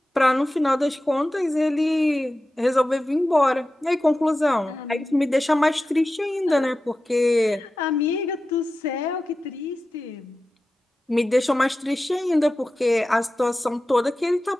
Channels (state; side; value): normal; both; correlation 0.94